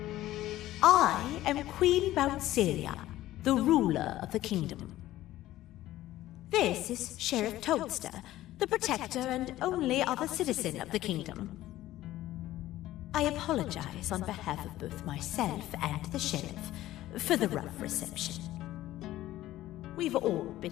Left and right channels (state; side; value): quieter; right; 15.0 dB